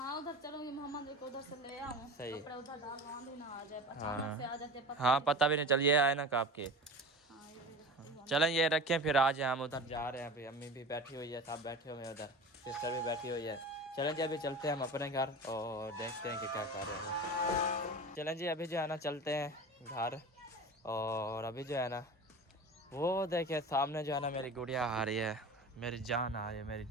उधर चलूंगी, मोहम्मद को उधर से ले आऊँ, सही। कपड़े उधर डाल आंधी ना आ जाए, अचानक से आ जाते पता हाँ नहीं पता भी नहीं चलिए आए ना आपके। हाँ ये भी रखती हूँ। चलें ये रखें, फिर आज हम उधर जा रहे हैं, अभी अम्मी भी बैठी हुई है, सब बैठे हुए हैं उधर, सिस्टर भी बैठी हुई है। चलें जी अभी चलते हैं हम अपने घर और देखते हैं कि क्या कर रहे हैं। चलें जी अभी जो है ना चलते हैं घर, और अभी जो है ना वो देखिए सामने जो है ना मेरी गुड़िया आ रही है, मेरी जान आ रही है, मेरी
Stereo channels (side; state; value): both; normal; correlation 0.34